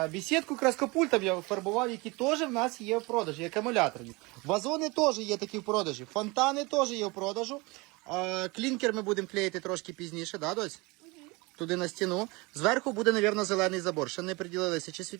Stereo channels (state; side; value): quieter; left; 25.3 dB